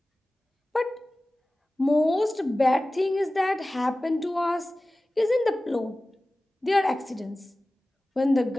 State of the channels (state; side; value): normal; both; correlation 0.97